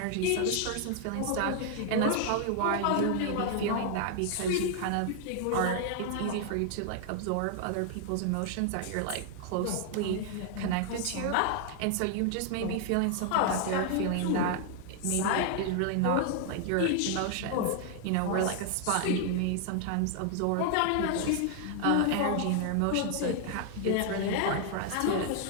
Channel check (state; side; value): different; both; correlation 0.00